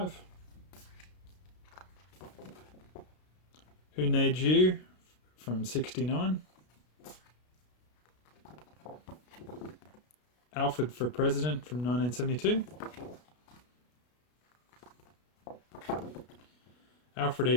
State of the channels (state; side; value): late; right; 33 ms